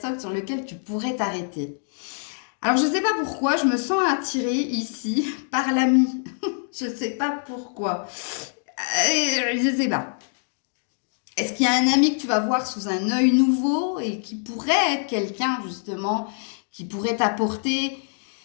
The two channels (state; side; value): silent; right; digital silence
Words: sur lequel tu pourrais t'arrêter. Alors, je ne sais pas pourquoi, je me sens attirée ici par l'ami. Je ne sais pas pourquoi. Je ne sais pas. Est-ce qu'il y a un ami que tu vas voir sous un œil nouveau et qui pourrait être quelqu'un, justement, qui pourrait t'apporter